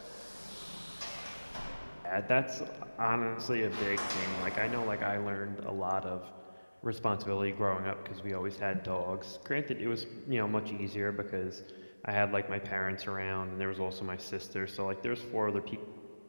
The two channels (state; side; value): inverted; both; correlation -1.00